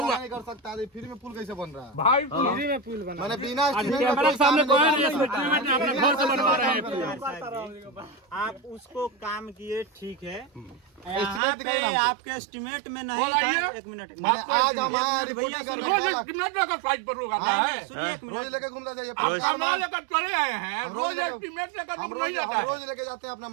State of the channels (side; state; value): left; drops out; at 11.4 s